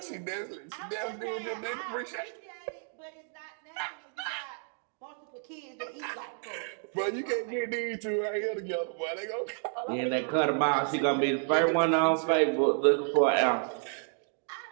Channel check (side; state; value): left; silent; 55 dB below the other